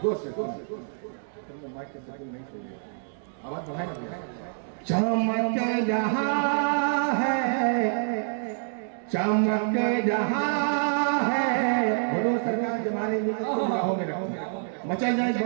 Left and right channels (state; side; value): silent; left; digital silence